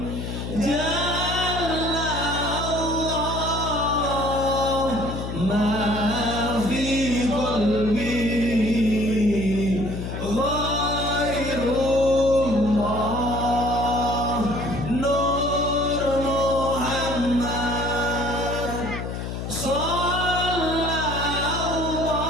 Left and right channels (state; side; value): noise; left; hum, 6 dB below the sound